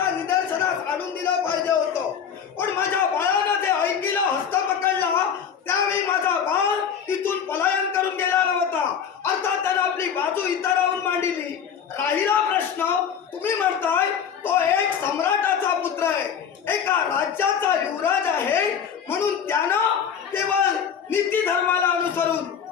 निदर्शनास आणून दिलं पाहिजे होतं, पण माझ्या बाळानं ते ऐकलं, हस्त पकडला त्यावेळी माझा बाळ इथून पलायन करून गेला नव्हता. अर्थात त्यानं आपली बाजू इतरांहून मांडली. राहिला प्रश्न, तुम्ही म्हणताय तो एक सम्राटाचा पुत्र आहे, एका राज्याचा युवराज आहे, म्हणून त्यानं केवळ नीती धर्माला अनुसरून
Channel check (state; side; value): quieter; right; 7.7 dB